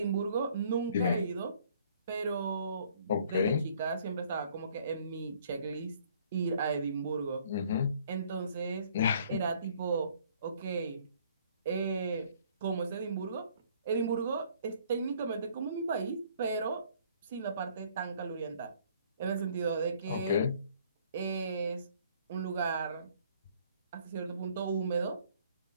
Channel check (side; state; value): both; inverted; correlation -0.59